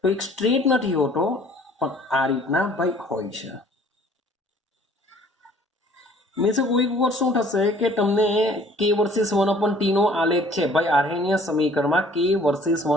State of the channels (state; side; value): normal; both; correlation 0.54